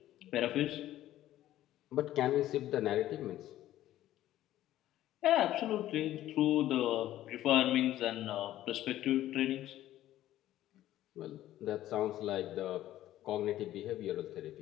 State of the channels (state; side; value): quieter; right; 13.7 dB